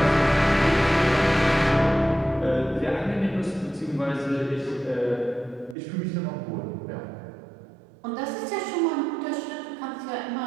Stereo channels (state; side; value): drops out; left; at 5.8 s